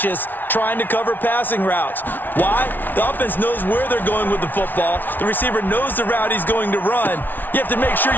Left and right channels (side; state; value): right; late; 0.088 ms